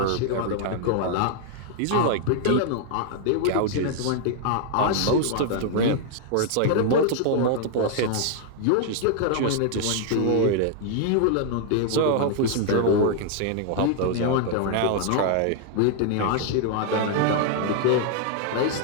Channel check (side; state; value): both; different; correlation 0.00